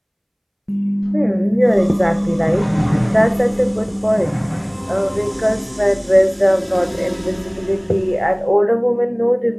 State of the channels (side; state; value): both; identical; correlation 1.00